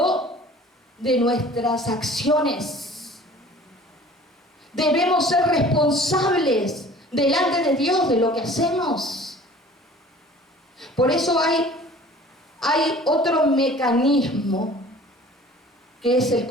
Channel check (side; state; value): both; normal; correlation 0.47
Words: de nuestras acciones. Debemos ser responsables delante de Dios de lo que hacemos. Por eso hay otro mecanismo que es el